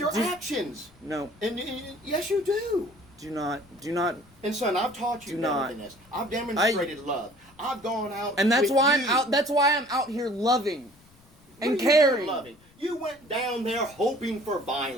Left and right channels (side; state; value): left; noise; rumble, 29 dB below the sound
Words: do- actions. No, And yes, you do. do not. And son, I've taught you Do better not. than this. I've demonstrated love. I've gone out, And that's with why you. I'm out. That's why I'm out here loving What and are you caring. doing loving? You went down there hoping for